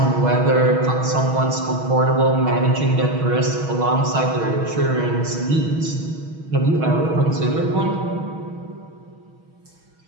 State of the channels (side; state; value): left; late; 6.3 ms